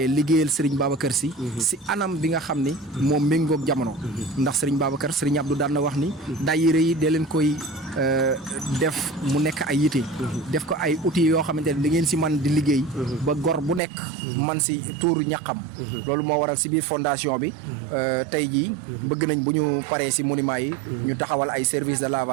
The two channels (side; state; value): left; drops out; at 13.8 s